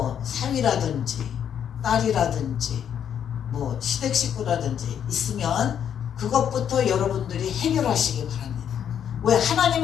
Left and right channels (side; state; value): right; quieter; 8.9 dB